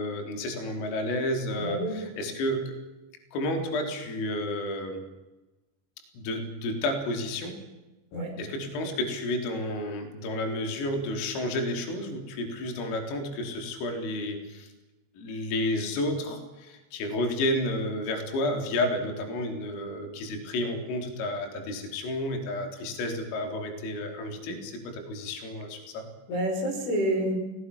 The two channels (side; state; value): right; late; 22 ms